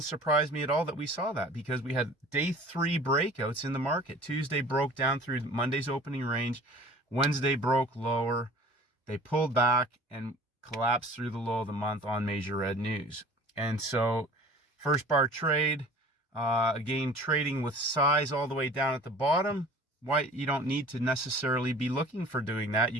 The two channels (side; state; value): both; normal; correlation 0.45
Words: surprise me at all that we saw that because we had day 3 breakouts in the market. Tuesday broke down through Monday's opening range. Wednesday broke lower. They pulled back and collapsed through the low of the month on major red news. And so first bar trade, again, trading with size all the way down at the bottom. Why you don't need to necessarily be looking for doing that.